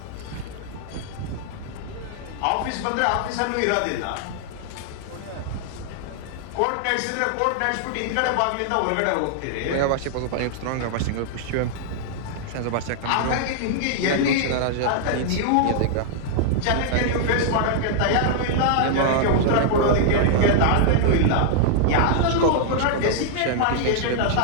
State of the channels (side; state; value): both; different; correlation -0.01